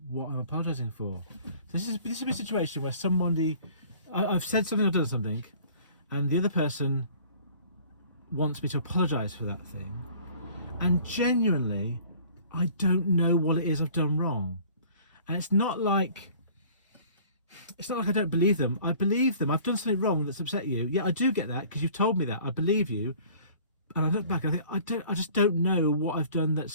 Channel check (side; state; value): both; inverted; correlation -0.50